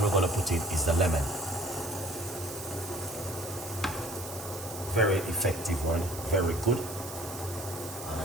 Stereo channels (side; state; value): right; noise; hiss, 11 dB below the sound